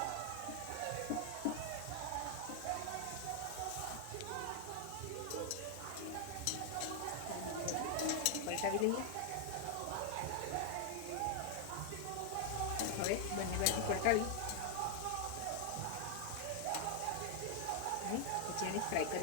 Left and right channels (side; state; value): both; different; correlation 0.00